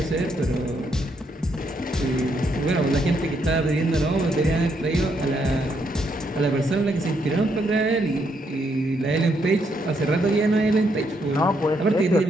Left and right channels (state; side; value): normal; both; correlation 0.75